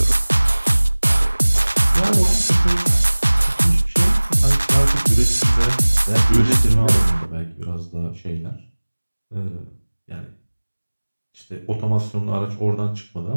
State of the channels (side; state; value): both; inverted; correlation -1.00